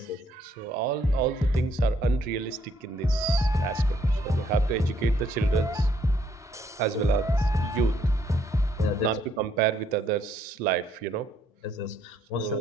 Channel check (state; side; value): normal; both; correlation 0.68